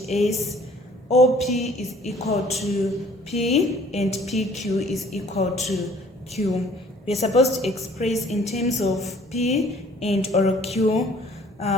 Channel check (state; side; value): normal; both; correlation 0.55